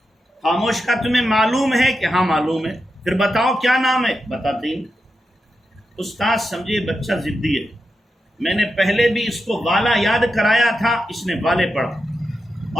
خاموش. کا تمہیں معلوم ہے کہ ہاں معلوم ہے. پھر بتاؤ کیا نام ہے. بتاتے ہی. استاد سمجھے بچہ ضدی ہے، میں نے پہلے بھی اس کو والا یاد کرایا تھا، اس نے والے پڑھا،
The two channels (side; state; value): both; normal; correlation 0.88